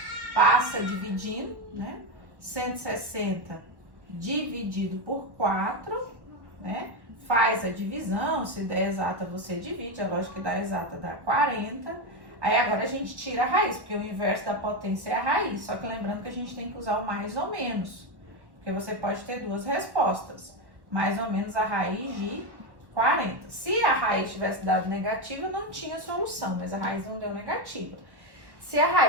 passa dividindo, né? 160 dividido por 4, né? Faz a divisão, se der exata você divide, a lógica que dá exata dá 40. Aí agora a gente tira a raiz, porque o inverso da potência é a raiz. Só que lembrando que a gente tem que usar o mais ou menos, porque você pode ter duas respostas. Mais ou menos a raiz de 40. Se a raiz tivesse dado negativa, não tinha solução, mas a raiz não deu negativa. Se a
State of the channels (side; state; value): left; late; 1.1 ms